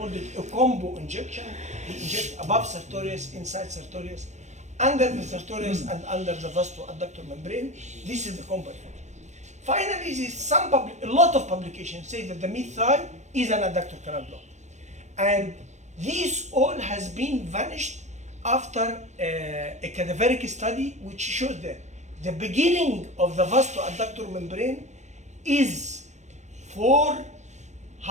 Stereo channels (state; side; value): late; left; 0.34 ms